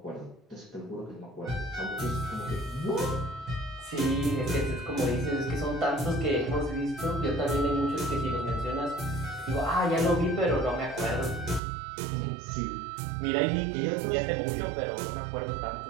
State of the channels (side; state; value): left; drops out; at 11.6 s